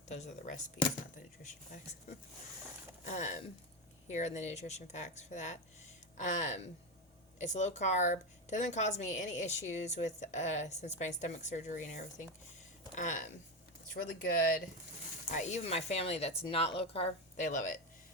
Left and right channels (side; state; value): both; normal; correlation 0.14